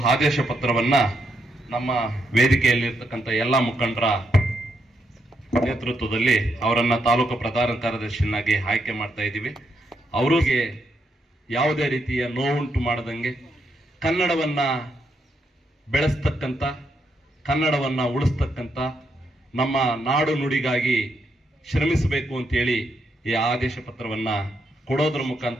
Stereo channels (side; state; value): both; normal; correlation 0.79